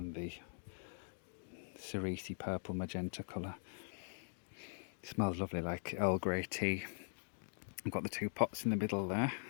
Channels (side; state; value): right; silent; digital silence